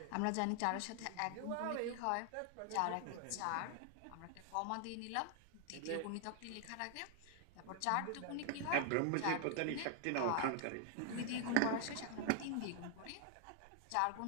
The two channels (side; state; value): both; different; correlation 0.00